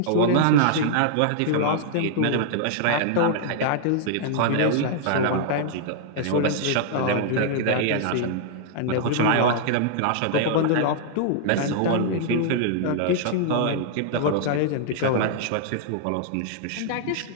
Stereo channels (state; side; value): different; both; correlation -0.01